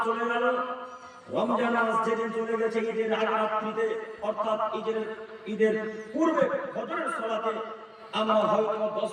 চলে গেল, রমজান মাস যেদিন চলে গেছে ঈদের আগ রাত্রিতে, অর্থাৎ ঈদের পূর্বে ফজরের সালাতে আমরা হয়তো 10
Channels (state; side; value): identical; both; correlation 1.00